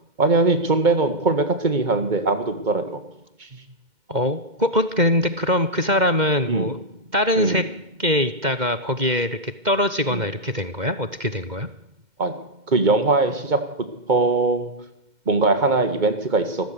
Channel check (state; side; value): late; left; 2.1 ms